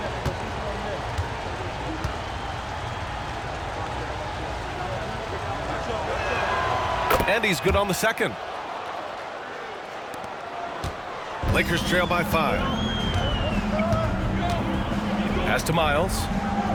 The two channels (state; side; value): identical; both; correlation 1.00